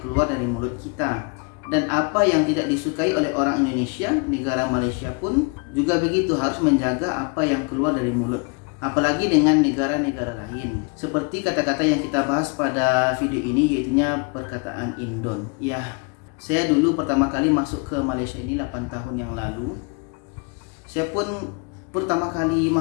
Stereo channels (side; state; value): right; quieter; 33.4 dB